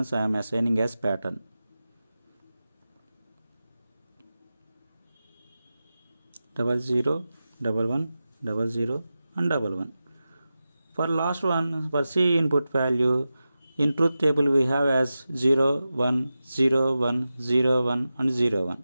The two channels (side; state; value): both; inverted; correlation -0.93